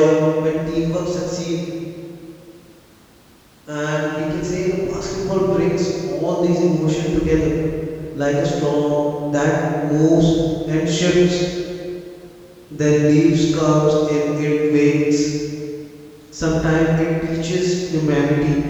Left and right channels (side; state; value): both; identical; correlation 1.00